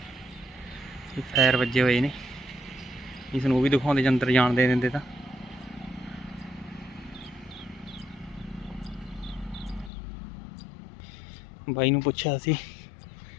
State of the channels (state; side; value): drops out; right; at 9.9 s